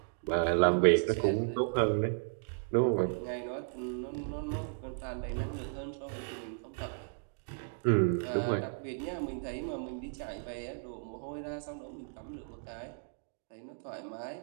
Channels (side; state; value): left; silent; digital silence